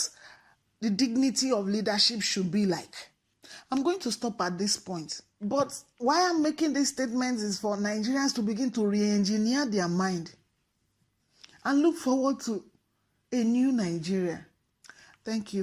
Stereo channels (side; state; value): both; identical; correlation 1.00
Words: the dignity of leadership should be like. I'm going to stop at this point. But why I'm making these statements is for Nigerians to begin to re-engineer their mind and look forward to a new Nigeria. Thank